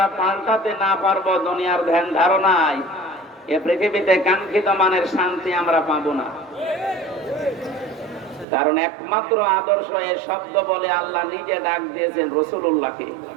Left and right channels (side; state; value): left; drops out; at 8.5 s